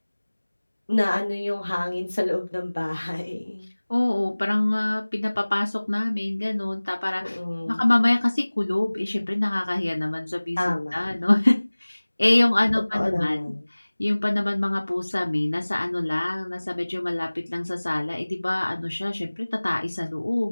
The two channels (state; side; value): inverted; both; correlation -1.00